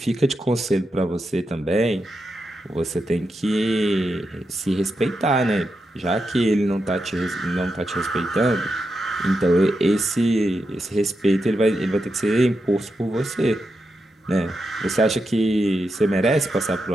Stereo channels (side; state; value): both; normal; correlation 0.86